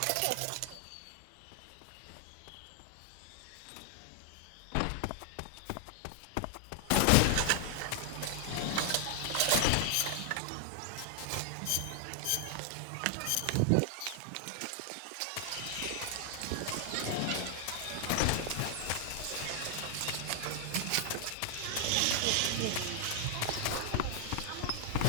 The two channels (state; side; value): different; both; correlation 0.00